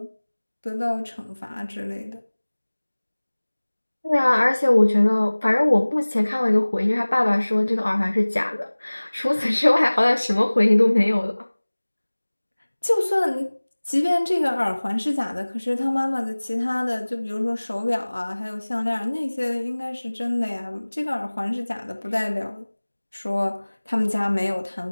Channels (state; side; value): inverted; both; correlation -1.00